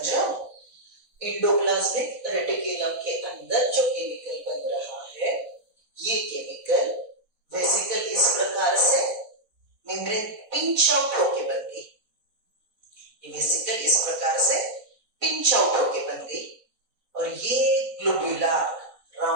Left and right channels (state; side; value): late; left; 4.1 ms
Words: रहे हो? एंडोप्लाज्मिक रेटिकुलम के अंदर जो केमिकल बन रहा है ये केमिकल वेसिकल इस प्रकार से मेम्ब्रेन पिंच आउट होके बन गई, ये वेसिकल इस प्रकार से पिंच आउट होके बन गई और ये ग्लोबुलर